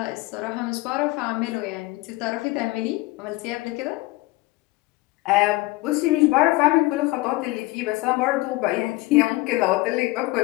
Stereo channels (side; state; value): right; quieter; 20.8 dB